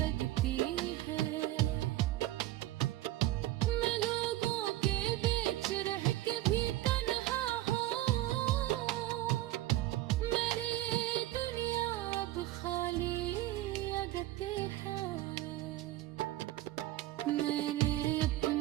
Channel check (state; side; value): quieter; left; 15.8 dB